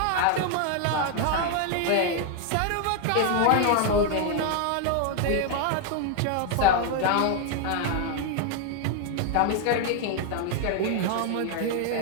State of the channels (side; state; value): both; different; correlation 0.01